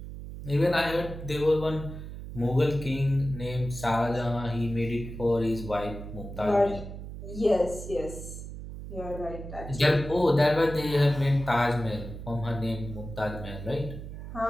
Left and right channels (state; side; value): noise; right; hum, 10 dB below the sound